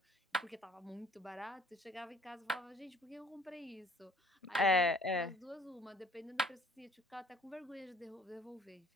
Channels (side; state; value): both; normal; correlation 0.56